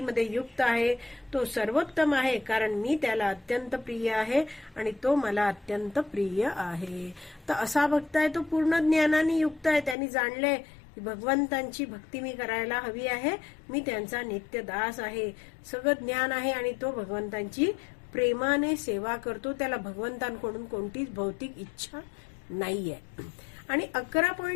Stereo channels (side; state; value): right; drops out; at 10.0 s